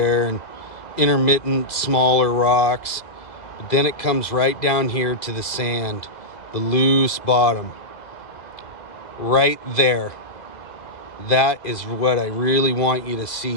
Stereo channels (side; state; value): right; late; 2.0 ms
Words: and intermittent smaller rocks. But then it comes right down here to the sand, the loose bottom. Right there. That is what I really want you to